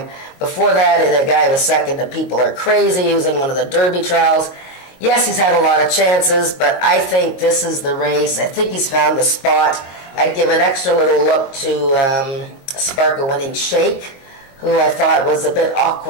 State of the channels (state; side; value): late; right; 22 ms